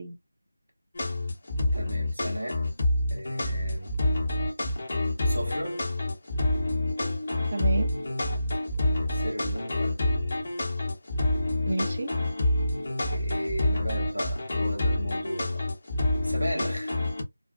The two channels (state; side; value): inverted; both; correlation -0.88